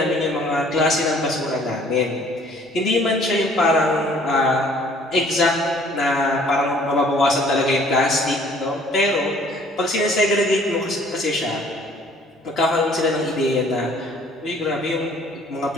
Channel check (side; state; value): both; normal; correlation 0.56